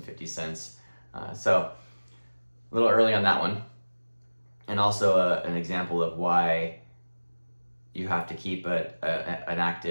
So a little early on that one. And also an example of why you have to keep an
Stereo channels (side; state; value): both; inverted; correlation -1.00